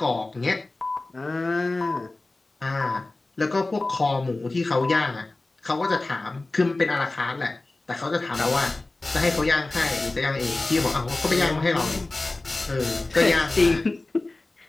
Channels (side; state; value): right; quieter; 3.1 dB